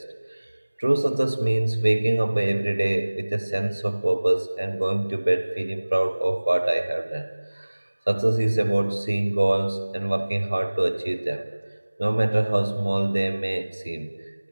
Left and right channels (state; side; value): inverted; both; correlation -1.00